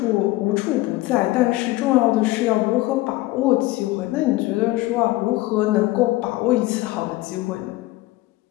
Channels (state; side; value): quieter; right; 18.6 dB